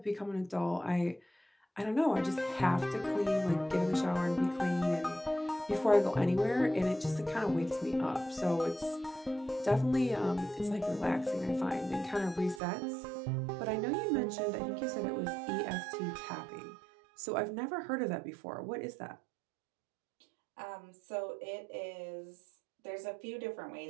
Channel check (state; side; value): drops out; left; at 12.6 s